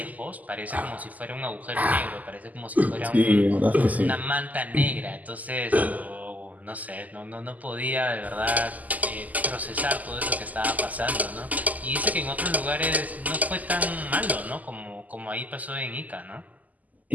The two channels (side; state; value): left; late; 0.078 ms